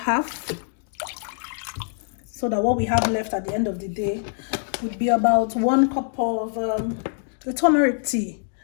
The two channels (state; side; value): silent; right; digital silence